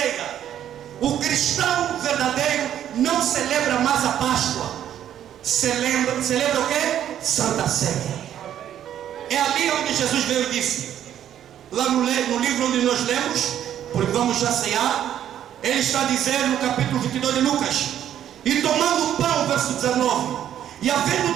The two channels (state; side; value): quieter; left; 10.6 dB